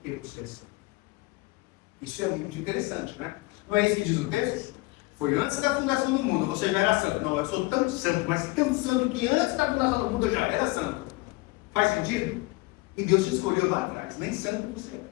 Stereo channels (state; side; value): quieter; right; 23.3 dB